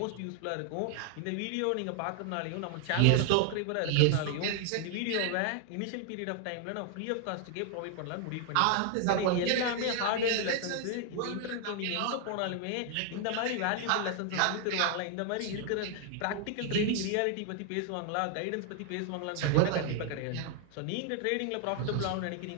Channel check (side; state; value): both; different; correlation 0.00